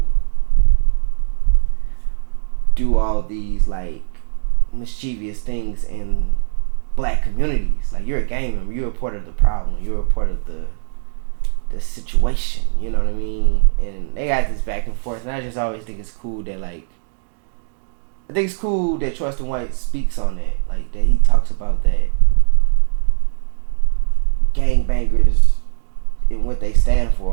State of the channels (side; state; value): left; silent; digital silence